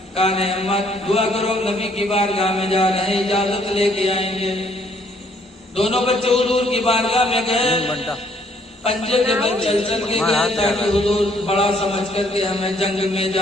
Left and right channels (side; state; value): both; normal; correlation 0.65